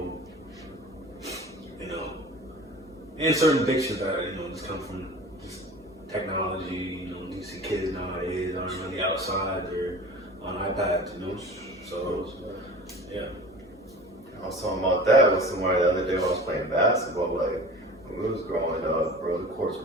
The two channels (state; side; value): normal; both; correlation 0.39